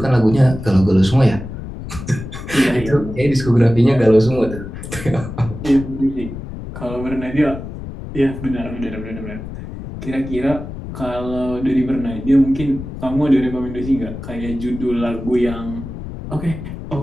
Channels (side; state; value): left; noise; rumble, 10 dB below the sound